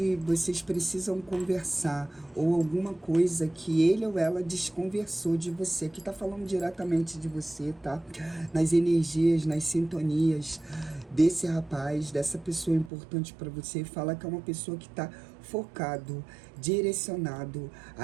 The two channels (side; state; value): left; drops out; at 12.9 s